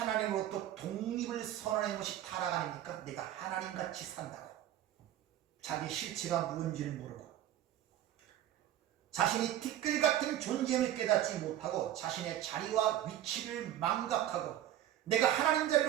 독립을 선언한 것이 타락 아닙니까? 내가 하나님같이 산다고. 자기 실체가 무엇인지를 모르고 자신이 티끌 같은 존재임을 깨닫지 못하고 자신의 자리와 위치를 망각하고 내가 하나님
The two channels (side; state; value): left; quieter; 12.2 dB